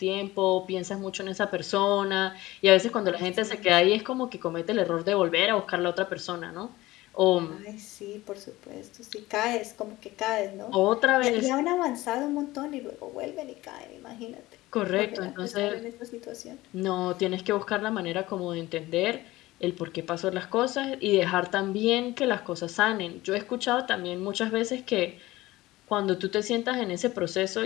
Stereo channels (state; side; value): quieter; right; 18.3 dB